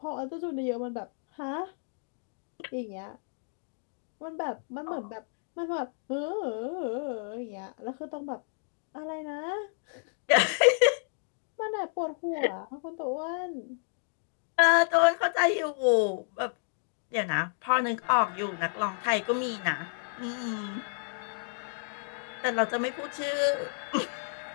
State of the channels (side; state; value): right; silent; digital silence